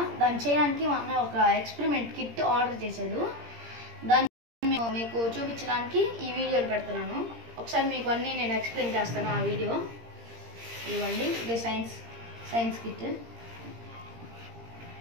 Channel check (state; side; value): late; left; 17 ms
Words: దాన్ని చేయడానికి మా అన్నయ్య ఒక ఎక్స్పెరిమెంట్ కిట్ ఆర్డర్ చేశాడు. దాన్ని మీకు చూపించడానికి ఈ వీడియోలు పెడుతున్నాను. ఒకసారి మీకు అన్నీ నేను ఎక్స్ప్లెయిన్ చేస్తాను. ఆ వీడియో ఇవ్వండి. ఇదే సైన్స్ కిట్.